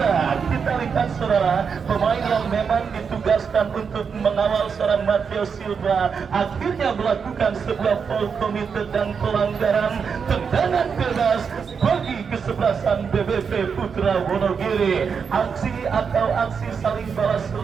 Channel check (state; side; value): quieter; left; 6.2 dB